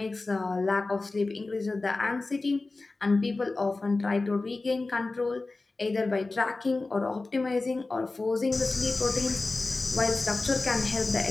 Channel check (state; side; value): quieter; right; 3.4 dB